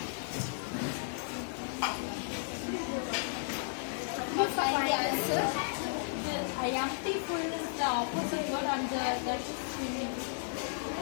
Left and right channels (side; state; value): right; silent; 55 dB below the other